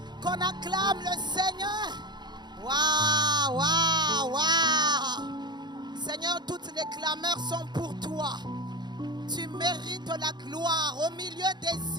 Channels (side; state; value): left; late; 0.21 ms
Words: qu'on acclame le Seigneur. Waouh, waouh, waouh. Seigneur, toutes les clameurs sont pour toi. Tu mérites la gloire. Au milieu